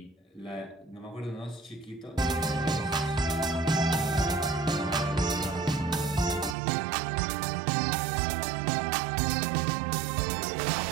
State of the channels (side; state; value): left; drops out; at 6.6 s